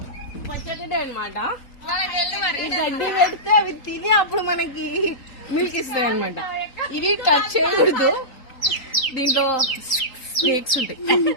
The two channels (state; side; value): late; right; 3.8 ms